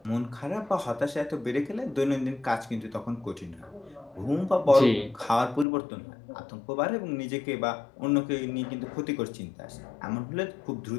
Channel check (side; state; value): right; drops out; at 5.7 s